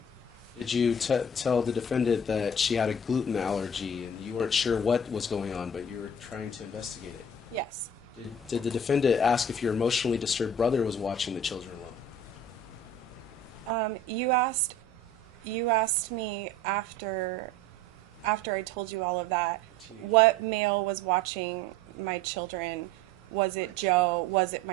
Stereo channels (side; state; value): both; normal; correlation 0.43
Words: Did you tell the defendant that she had a gluten allergy and you weren't sure what was going on, but you were trying to investigate it? Yes. Did the defendant ask if your emotionally disturbed brother was watching the children alone? You asked me after I told you all of that, what male was watching my children? Was it Joe? Was it